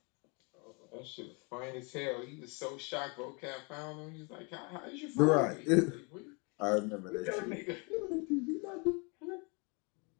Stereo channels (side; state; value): right; quieter; 32.7 dB